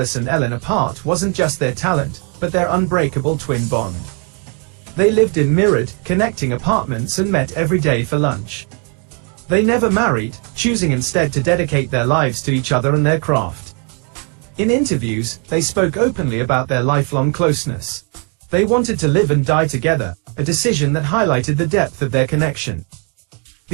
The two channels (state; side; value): quieter; left; 37.7 dB